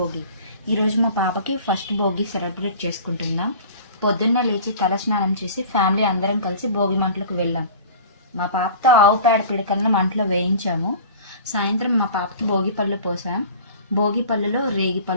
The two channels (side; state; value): both; inverted; correlation -0.41